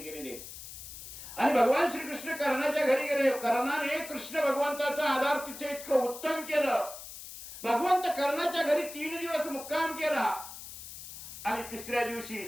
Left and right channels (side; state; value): left; noise; hiss, 12 dB below the sound